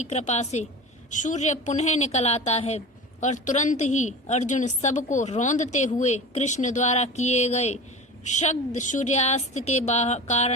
कृपा से सूर्य पुनः निकल आता है और तुरंत ही अर्जुन सबको रौंदते हुए कृष्ण द्वारा किए गए शब्द सूर्यास्त के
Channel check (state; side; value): normal; both; correlation 0.33